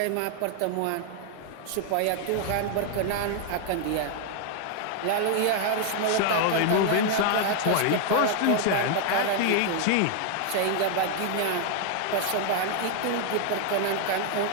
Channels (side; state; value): both; different; correlation 0.00